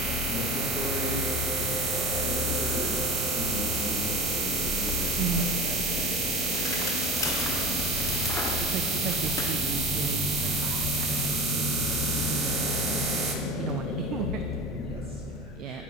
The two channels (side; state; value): both; normal; correlation 0.32